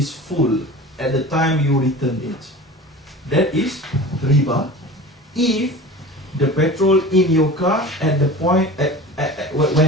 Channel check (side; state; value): both; normal; correlation 0.36